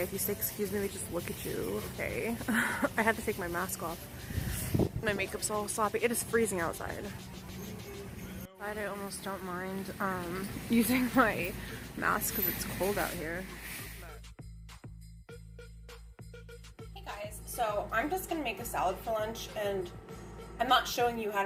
If you say excuse me, they just look at you. Okay. I had to take my mask off. My makeup's all sloppy. It is freezing outside. I almost don't mind using my mask because it's cold out here. Hey guys, so I'm just gonna make a salad for lunch, and I'm not showing you how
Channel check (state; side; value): identical; both; correlation 1.00